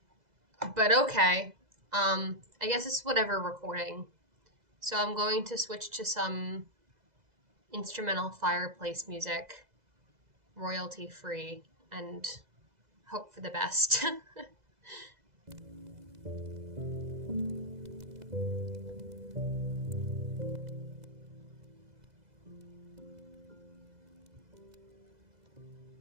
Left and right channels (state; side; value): late; left; 2.0 ms